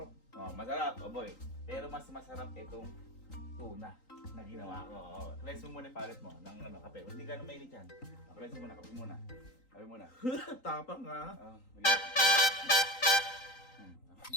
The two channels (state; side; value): late; right; 3.9 ms